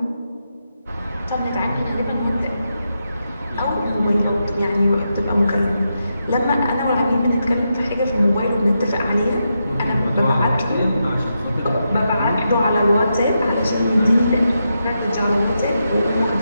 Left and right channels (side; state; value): both; inverted; correlation -0.85